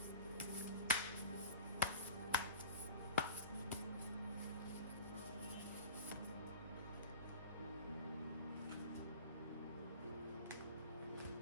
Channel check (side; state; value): both; inverted; correlation -0.40